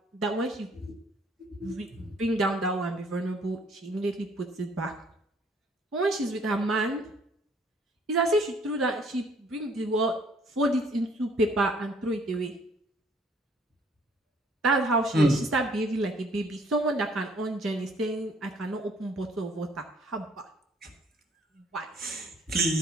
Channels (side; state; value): both; normal; correlation 0.61